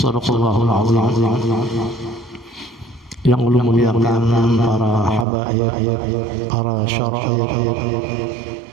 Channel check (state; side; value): drops out; left; at 5.2 s